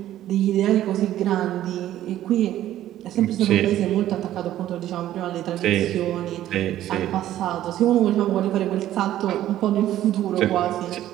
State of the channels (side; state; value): left; quieter; 12.9 dB